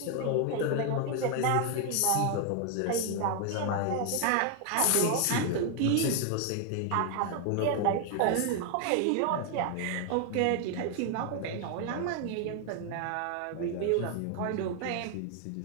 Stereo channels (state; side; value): different; both; correlation 0.00